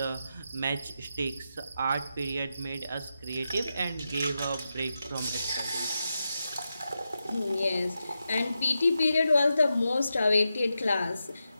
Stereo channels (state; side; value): inverted; both; correlation -0.88